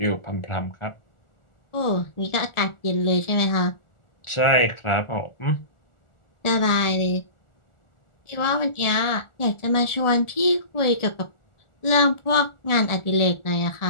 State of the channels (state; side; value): late; right; 1.4 ms